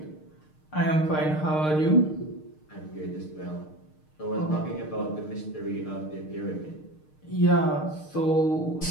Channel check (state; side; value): late; right; 6.5 ms